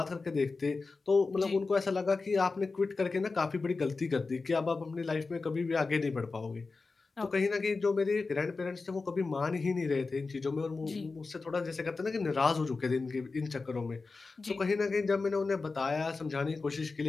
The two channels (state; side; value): quieter; right; 4.0 dB